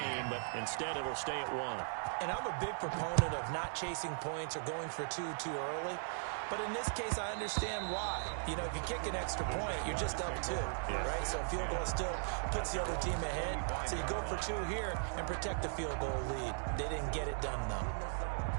but instead it'll stay at 1. And I'm a big proponent of not chasing points or going for 2 too early. But in this case, I understand why. You know, if you kick an extra point, you're just up 2, right? So a field goal still puts the other team ahead. So you go for 2 here and protect the field goal lead. They didn't get it done, though.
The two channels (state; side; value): silent; left; digital silence